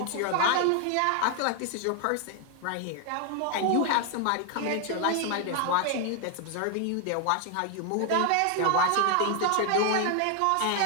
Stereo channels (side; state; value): both; different; correlation 0.00